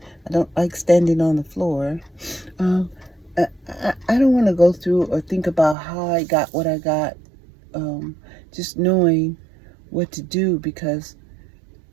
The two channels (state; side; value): drops out; left; at 5.8 s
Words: I don't like standing on the floor. I don't want to go through or think about how I got what I got. Just knowing what to do, because